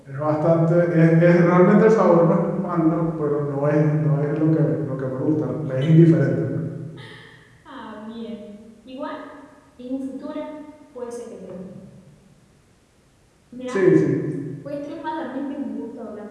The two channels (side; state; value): both; identical; correlation 1.00